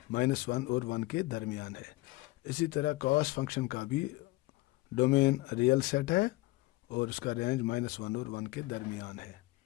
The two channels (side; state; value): right; quieter; 20.6 dB